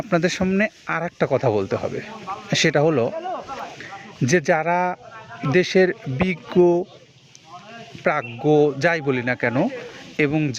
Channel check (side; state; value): both; identical; correlation 1.00